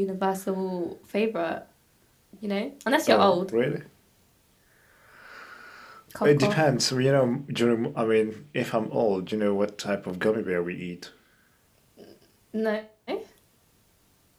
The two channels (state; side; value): identical; both; correlation 1.00